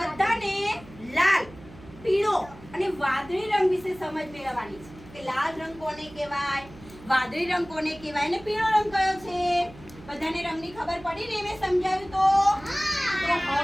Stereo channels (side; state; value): right; noise; hum, 20 dB below the sound